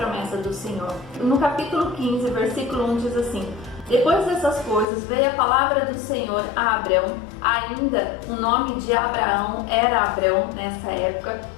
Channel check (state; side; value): drops out; right; at 4.9 s